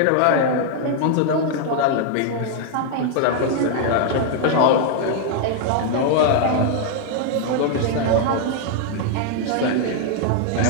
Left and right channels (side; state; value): both; different; correlation 0.00